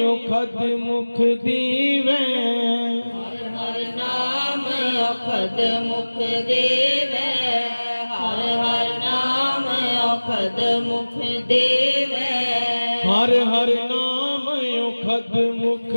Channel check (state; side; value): inverted; both; correlation -1.00